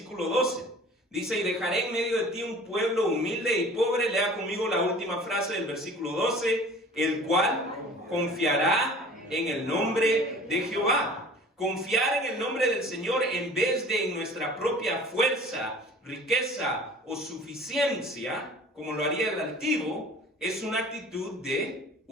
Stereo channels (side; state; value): both; normal; correlation 0.45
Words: 12. Dice, y dejaré en medio de ti un pueblo humilde y pobre. Lea conmigo la última frase del versículo 12, el cual confiará en el nombre de Jehová. Confiar en el nombre del Señor en vez de en nuestra propia fuerza, riqueza o suficiencia, como lo haría el altivo, es una actitud de